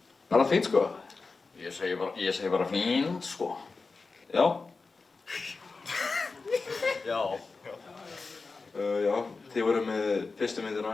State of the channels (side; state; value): right; quieter; 4.1 dB